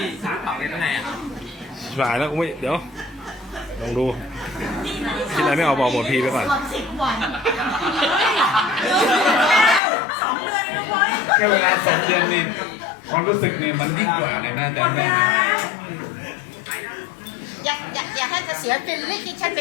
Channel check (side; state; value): right; drops out; at 9.8 s